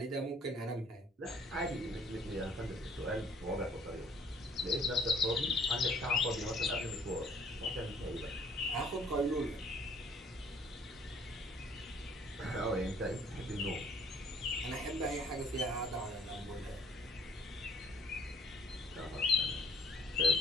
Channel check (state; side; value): normal; both; correlation 0.60